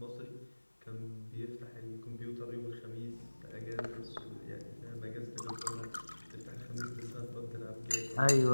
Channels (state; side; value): inverted; both; correlation -1.00